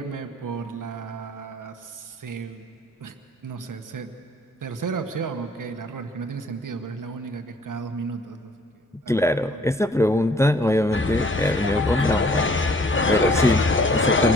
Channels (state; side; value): normal; both; correlation 0.57